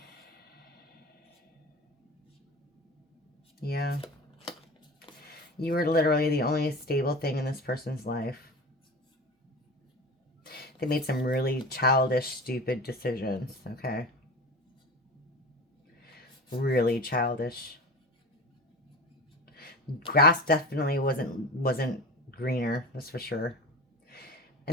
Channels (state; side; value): normal; both; correlation 0.31